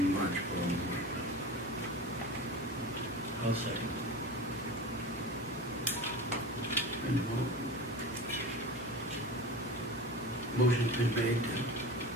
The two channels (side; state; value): both; normal; correlation 0.30